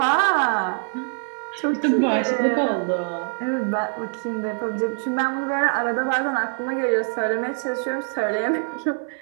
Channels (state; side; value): silent; left; digital silence